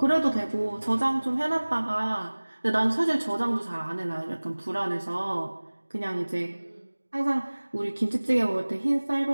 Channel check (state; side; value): inverted; both; correlation -1.00